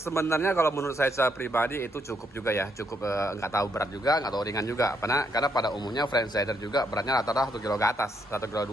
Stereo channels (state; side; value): normal; both; correlation 0.75